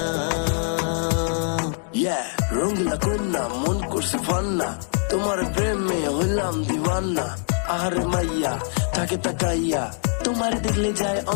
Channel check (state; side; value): silent; right; 56 dB below the other